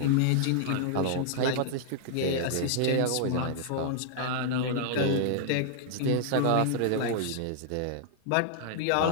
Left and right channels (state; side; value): different; both; correlation -0.01